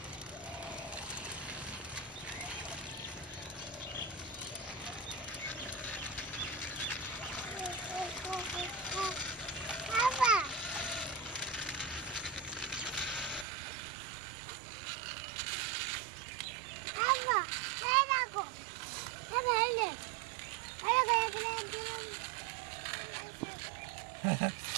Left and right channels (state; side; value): drops out; left; at 13.5 s